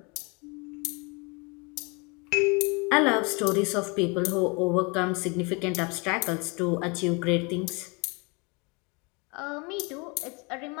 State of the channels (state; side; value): quieter; right; 30.1 dB